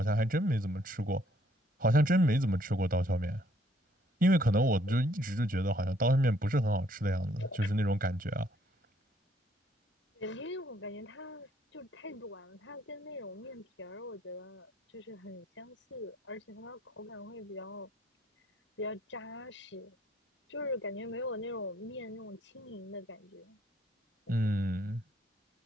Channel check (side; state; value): both; normal; correlation 0.66